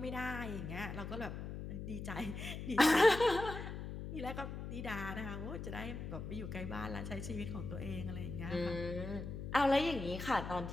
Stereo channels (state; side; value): noise; left; hum, 7 dB below the sound